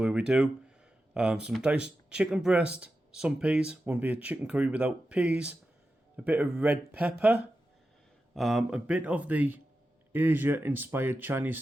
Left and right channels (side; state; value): both; normal; correlation 0.91